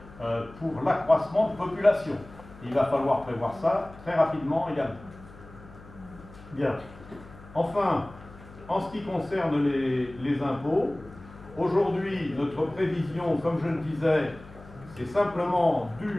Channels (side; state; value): left; noise; hum, 19 dB below the sound